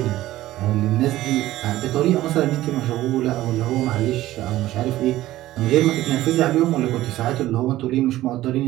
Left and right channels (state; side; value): quieter; left; 15.4 dB